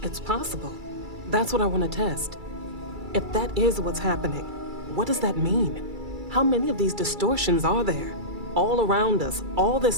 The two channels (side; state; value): left; late; 2.3 ms